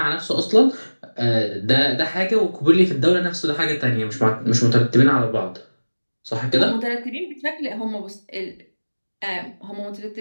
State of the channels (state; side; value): inverted; both; correlation -1.00